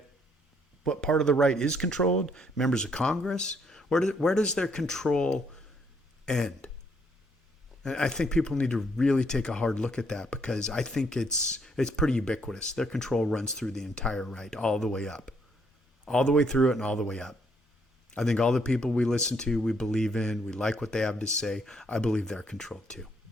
what part of the right is controlled? Members of Congress? Where does their control end? And I think people need to really take a hard look at that because I think it's pretty ubiquitous. Their control runs through the entire right, all the way up. All the way through it and all the way up. I think all the people we listen to, we believe in, we like what they have to say, I believe they're controlled too.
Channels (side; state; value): both; normal; correlation 0.70